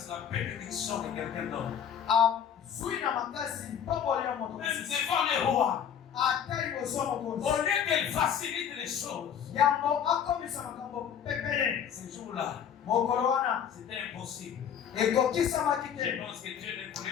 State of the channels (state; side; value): quieter; right; 8.5 dB